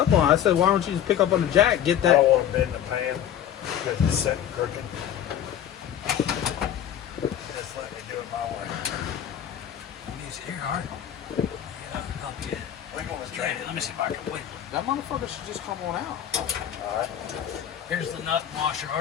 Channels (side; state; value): right; quieter; 10.2 dB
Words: on it. I said, why don't you just pick up on the jack? Get I that. don't want to bend the pan because it's sitting crooked. Just let me do it my way. Here, all right. Yeah, I'll help you. Wiggle the Let train. me see if I can wiggle. That motherfucker should just come on out. All right. Here's the nut washer,